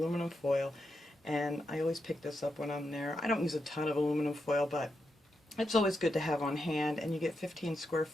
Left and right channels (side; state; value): both; normal; correlation 0.85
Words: foil, and I always pick this up when I'm there. I don't use a ton of aluminum foil, but it's always good to have on hand, and you get 15 square